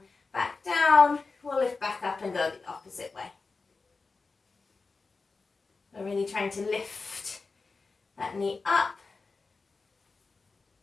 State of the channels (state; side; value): quieter; right; 4.1 dB